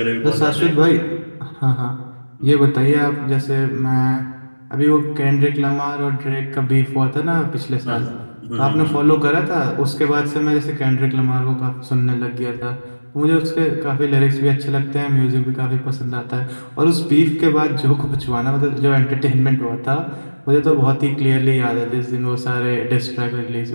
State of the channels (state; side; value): inverted; both; correlation -1.00